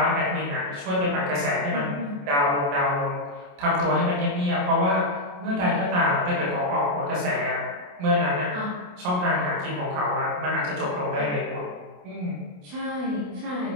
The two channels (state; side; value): late; left; 28 ms